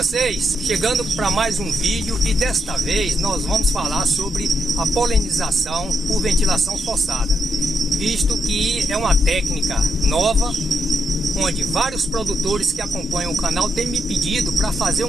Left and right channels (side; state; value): both; normal; correlation 0.80